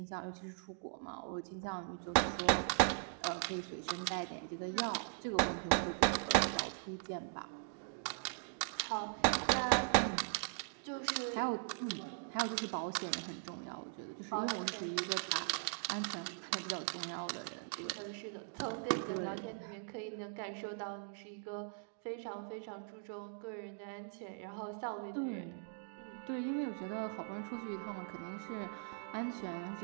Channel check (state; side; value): silent; left; digital silence